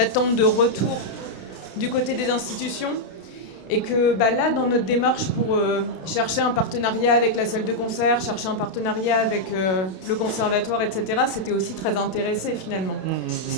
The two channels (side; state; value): right; late; 32 ms